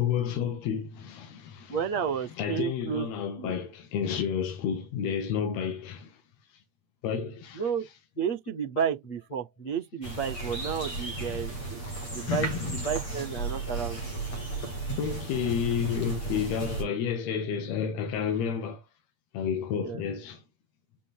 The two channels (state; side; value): late; right; 8.5 ms